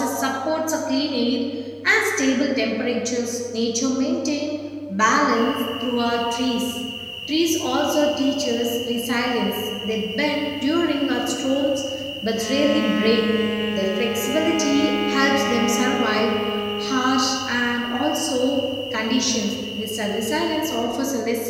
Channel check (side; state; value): both; identical; correlation 1.00